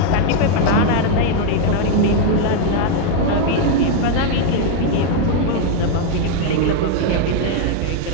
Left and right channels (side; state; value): both; different; correlation 0.01